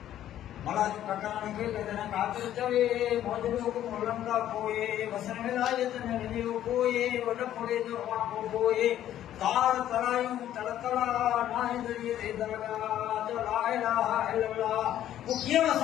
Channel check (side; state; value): right; quieter; 11.8 dB